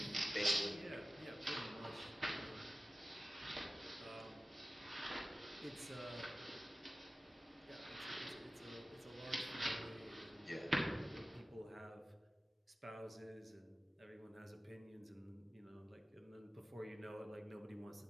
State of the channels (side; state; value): both; normal; correlation 0.95